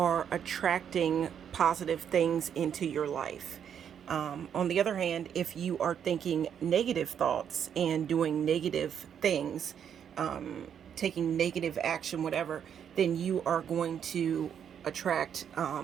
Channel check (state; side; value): quieter; left; 8.4 dB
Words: attracting positive things into your life. On the other hand, if you are thinking negative thoughts and doing negative things, taking negative action, whatever, then you are going to attract